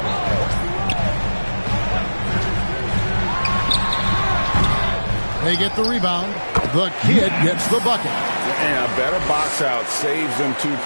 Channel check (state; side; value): inverted; both; correlation -1.00